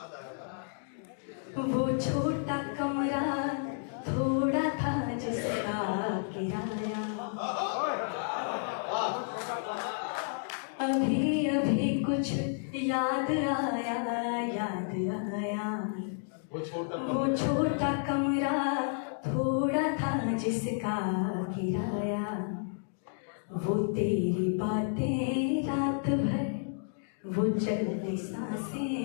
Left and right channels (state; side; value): silent; right; digital silence